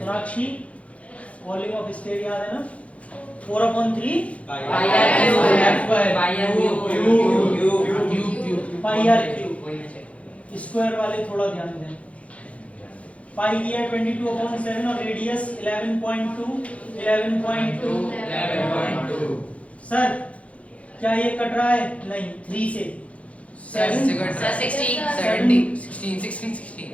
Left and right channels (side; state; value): right; late; 0.064 ms